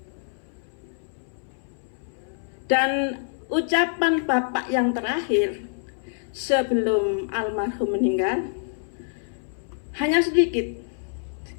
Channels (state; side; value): silent; right; 61 dB below the other